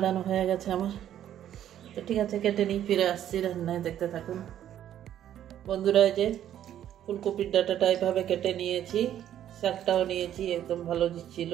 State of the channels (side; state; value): left; quieter; 11.0 dB